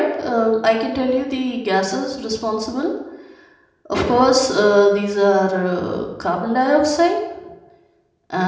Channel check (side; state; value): both; identical; correlation 1.00